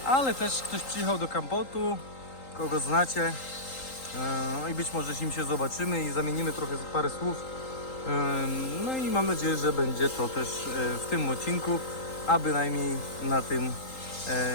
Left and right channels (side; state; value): right; late; 3.8 ms